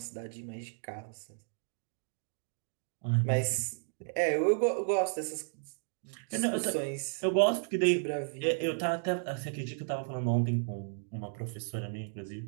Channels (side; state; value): left; silent; digital silence